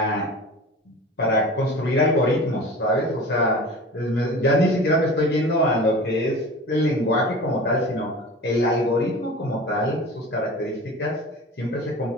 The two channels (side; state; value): both; normal; correlation 0.36